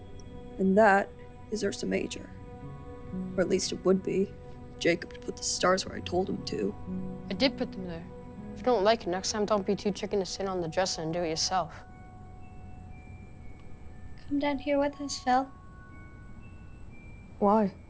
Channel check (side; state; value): both; identical; correlation 1.00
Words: And that is Ursa Major. Or at least it would be. Jacob put the stars where I told him to. I did put them there. If you don't like it, next time don't be too chicken to sit on the dresser and do it yourself. Come down here with us, Phil. Why?